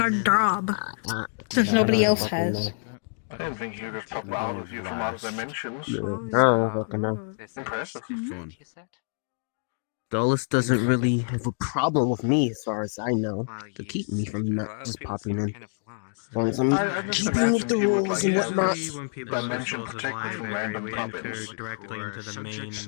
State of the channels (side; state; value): right; silent; digital silence